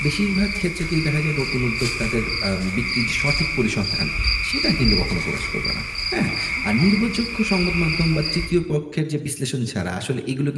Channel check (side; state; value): both; identical; correlation 1.00